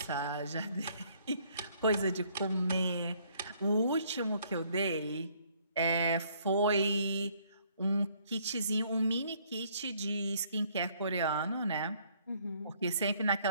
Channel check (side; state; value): both; inverted; correlation -0.64